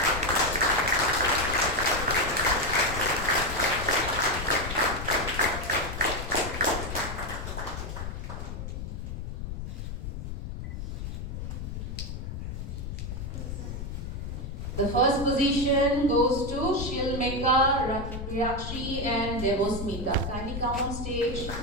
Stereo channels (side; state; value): left; noise; rumble, 6 dB below the sound